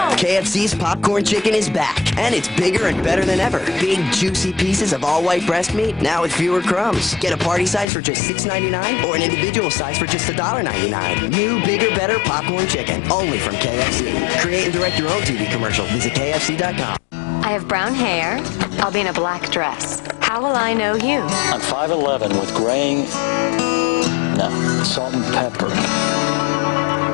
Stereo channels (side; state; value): right; drops out; at 7.9 s